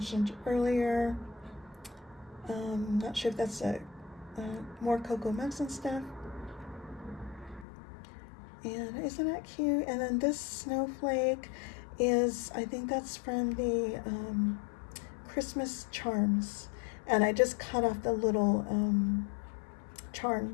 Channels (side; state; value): right; drops out; at 7.7 s